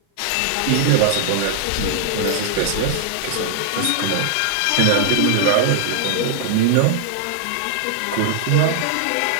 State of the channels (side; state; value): both; different; correlation -0.01